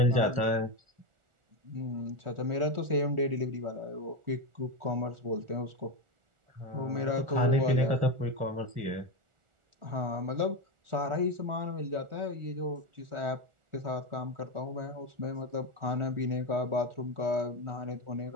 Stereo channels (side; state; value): left; late; 1.4 ms